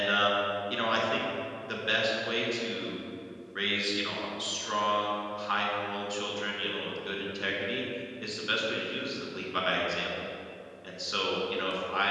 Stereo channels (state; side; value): identical; both; correlation 1.00